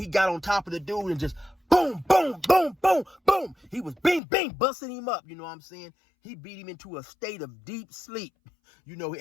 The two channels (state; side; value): drops out; right; at 4.2 s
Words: got on top of the dude and just boom, boom, boom, boom, boom. He was bing, bing, busting him up. You know what I'm saying? He beat him into a state of deep sleep.